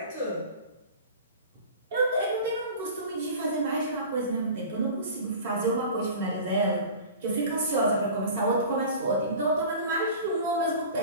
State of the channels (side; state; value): both; inverted; correlation -0.39